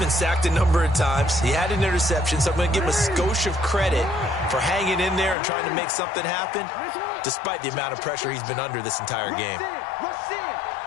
sacked a number of times. He had an interception, so I'm going to give him a skosh of credit for hanging in there and trying to make something happen, despite the amount of pressure he's been under this entire game. Rush in.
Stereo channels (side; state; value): right; drops out; at 5.4 s